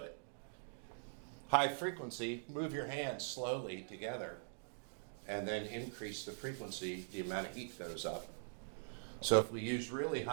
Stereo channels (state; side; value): silent; left; digital silence